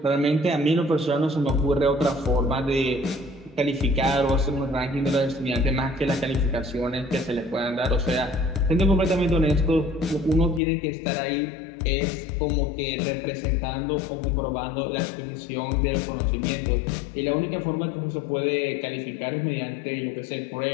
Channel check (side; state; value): right; drops out; at 10.6 s